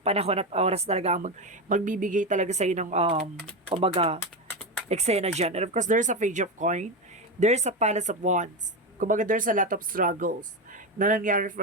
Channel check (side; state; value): both; normal; correlation 0.15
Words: at oras talaga magbibigay talaga sa'yo ng, kumbaga, eksena dyan. And of course, there's a Page of Coin. There's a Palace of Wands. Kumbaga, there's a lot of struggles na nangyari